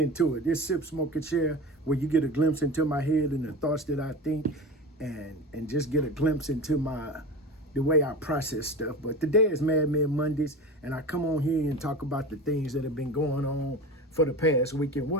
it. This Sip Smoke and Share, where you get a glimpse into my head and the thoughts that I think, and just get a glimpse into the way I process stuff. But today is Mad Men Mondays, and I come on here and talk about the things that have been going on for the past week. And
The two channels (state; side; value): normal; both; correlation 0.30